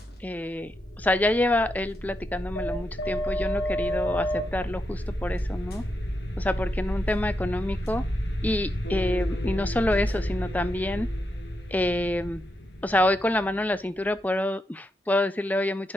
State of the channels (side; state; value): both; normal; correlation 0.84